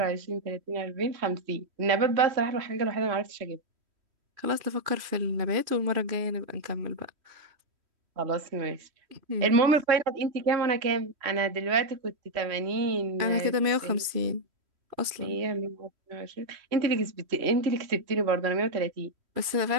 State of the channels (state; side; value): late; left; 3.1 ms